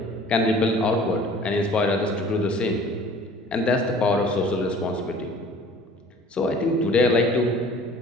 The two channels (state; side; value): normal; both; correlation 0.49